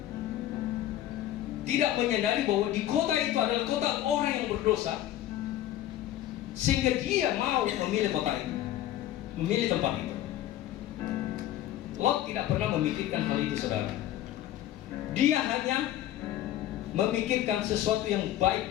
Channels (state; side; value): quieter; right; 13.0 dB